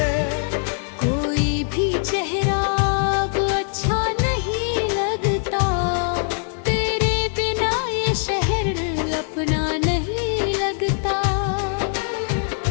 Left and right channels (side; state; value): right; silent; 58 dB below the other